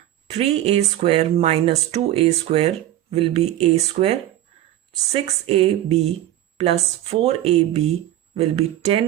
3a square minus 2a square will be a square. 6ab plus 4ab will be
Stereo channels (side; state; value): left; quieter; 13.5 dB